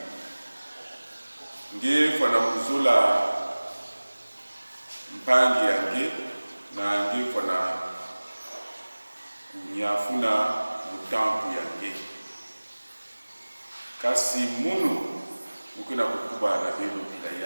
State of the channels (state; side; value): inverted; both; correlation -1.00